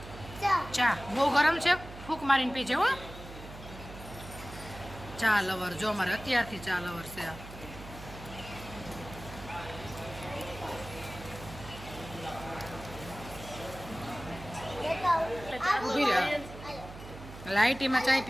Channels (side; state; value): right; noise; hum, 14 dB below the sound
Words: ચા. બહુ ગરમ છે, ફૂંક મારીને પીજે હો. ચા લવર જો અમારે અત્યારથી ચા લવર છે. લાઈટીમાં ચાય